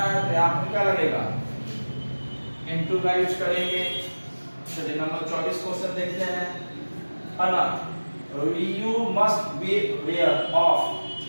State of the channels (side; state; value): both; inverted; correlation -1.00